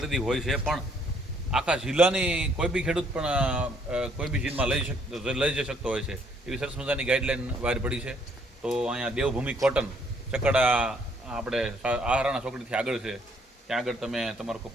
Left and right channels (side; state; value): both; normal; correlation 0.66